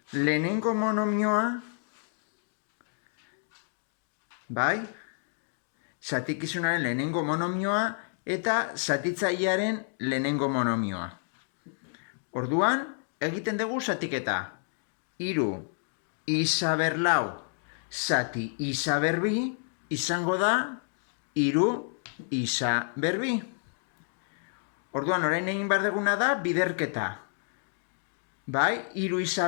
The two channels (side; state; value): right; silent; 58 dB below the other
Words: lehenengo monomioa, bai? Zatikizunaren lehenengo monomioa eta zatitzailearen lehenengo monomioa. Orduan, egiten dugu zatiketa. 3 isa ber 4 zati isa ber 2 izango da 3 isa ber 2. Orduan, orain egin behar duguna da biderketa. Bai, 3 isa